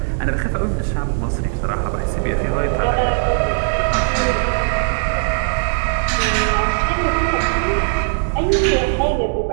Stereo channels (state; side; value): silent; left; digital silence